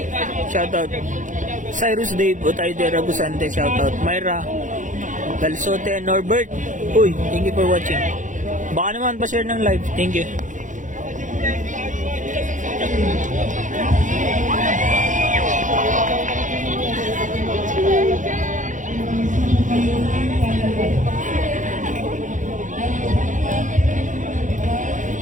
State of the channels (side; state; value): left; late; 0.37 ms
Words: shoutout. Cyrus Dave Otayde Ragusante, shoutout. Myra Galsote Norbert, uy, thank you for watching. Baka naman pa-share ng live, thank you.